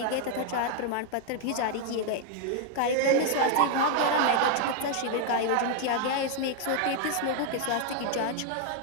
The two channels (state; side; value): different; both; correlation 0.00